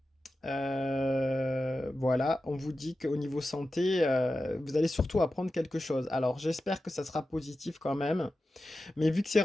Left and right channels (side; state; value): both; normal; correlation 0.93